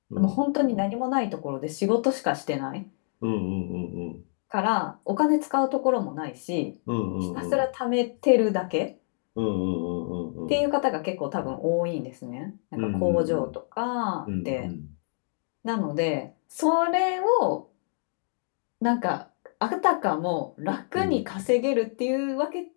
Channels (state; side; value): silent; right; 60 dB below the other